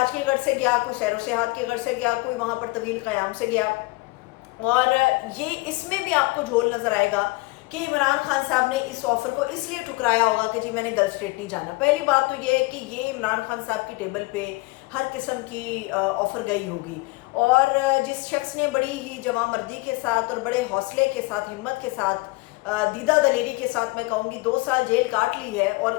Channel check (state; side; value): quieter; right; 23.7 dB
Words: کے غرض سے گیا، کوئی سیر و سیاحت کے غرض سے گیا، کوئی وہاں پر طویل قیام سے گیا. اور یہ اس میں بھی آپ کو جھول نظر آئے گا کہ عمران خان صاحب نے اس آفر کو اس لیے ٹھکرایا ہوگا کہ جی میں نے گلف اسٹیٹ نہیں جانا. پہلی بات تو یہ ہے کہ یہ عمران خان صاحب کی ٹیبل پہ ہر قسم کی آفر گئی ہوگی، اور جس شخص نے بڑی ہی جواں مردی کے ساتھ اور بڑے حوصلے کے ساتھ، ہمت کے ساتھ، دیدہ دلیری کے ساتھ میں کہوں گی 2 سال جیل کاٹ لی ہے، اور